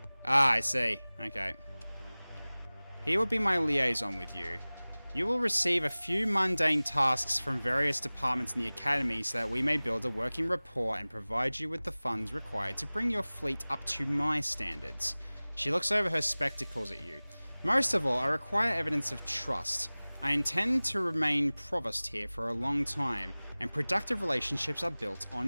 Ah, I see. Okay. He will be my liaison with you. You will receive a few mundane tasks from various departments in the Academy so that we may build a working rapport and provide you with the funds required to bring your fleet up to my standards. She looks over her spectacles at you. Most of all, I require evidence of trust. I intend to remain provost here for a long time, and productive relationships are built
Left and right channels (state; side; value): inverted; both; correlation -0.99